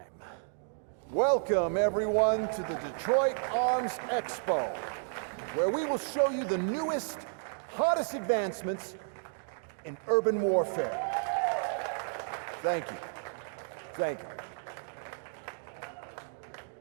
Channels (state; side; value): silent; left; digital silence